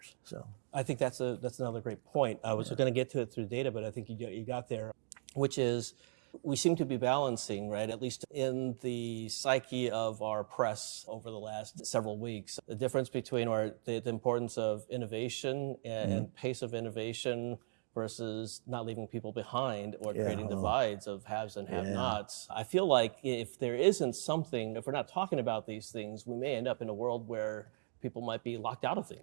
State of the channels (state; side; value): silent; left; digital silence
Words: So I think that's another great point. I was going to get to it through data, but I think you got there, which is we seem to be balancing, right, at least in the psyche of our press over the last several weeks, the difference between the importance of innovation and pace of innovation versus not leaving people behind or creating divides of haves and have-nots. I feel like if there isn't something, if we're not talking about these things, we may end up in a world where people might be locked out of